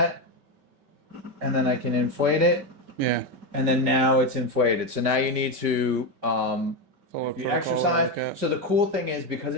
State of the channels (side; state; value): left; late; 5.2 ms